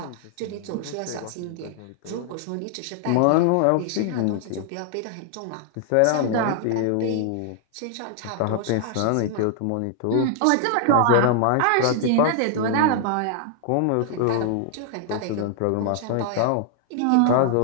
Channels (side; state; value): both; different; correlation 0.00